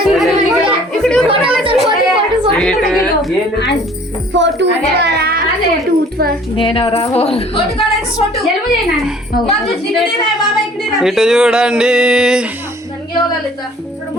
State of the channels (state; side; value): normal; both; correlation 0.53